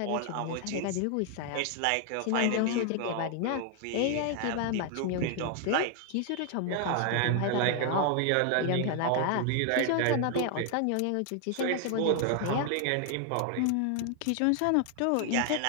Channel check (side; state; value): both; different; correlation 0.00